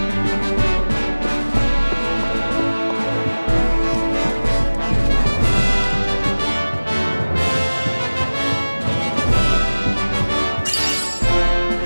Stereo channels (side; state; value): both; inverted; correlation -1.00